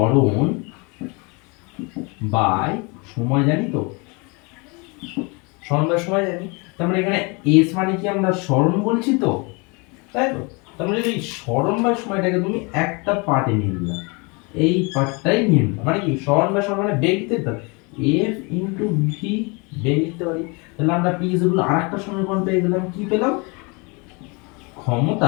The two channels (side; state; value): right; quieter; 29.8 dB